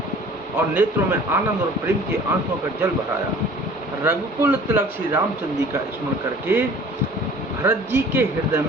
और नेत्रों में आनंद और प्रेम के आंसुओं का जल भराया। रघुकुल तिलक श्री रामचंद्र जी का स्मरण करके भरत जी के हृदय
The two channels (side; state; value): both; normal; correlation 0.48